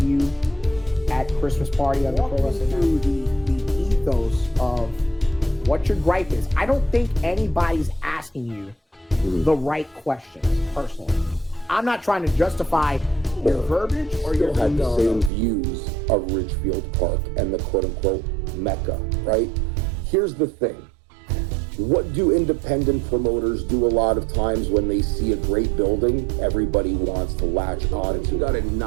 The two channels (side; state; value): left; drops out; at 15.3 s